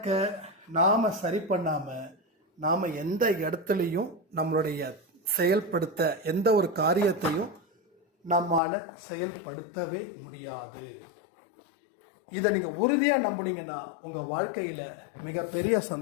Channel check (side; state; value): right; drops out; at 8.6 s